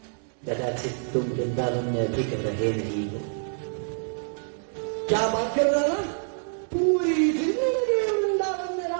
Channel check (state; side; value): silent; left; digital silence